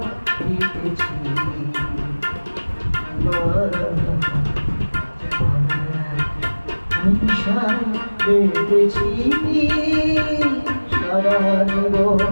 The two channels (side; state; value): both; inverted; correlation -1.00